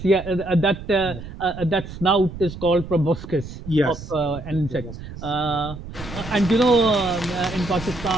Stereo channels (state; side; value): noise; right; rumble, 12 dB below the sound